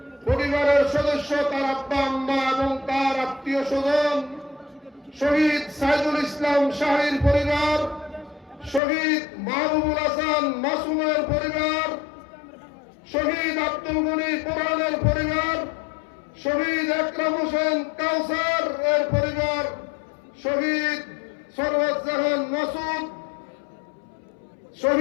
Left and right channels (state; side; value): drops out; right; at 8.8 s